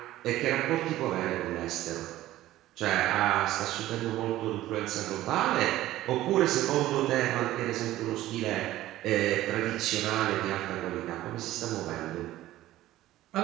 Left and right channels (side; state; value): left; quieter; 15.1 dB